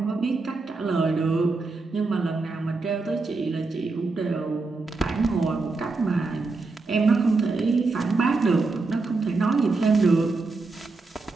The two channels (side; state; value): left; quieter; 3.8 dB